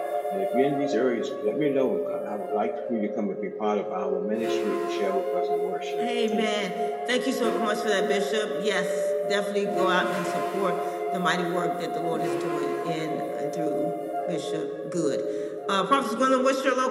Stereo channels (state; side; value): identical; both; correlation 1.00